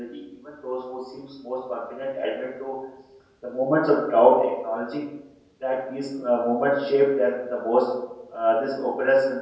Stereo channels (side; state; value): both; identical; correlation 1.00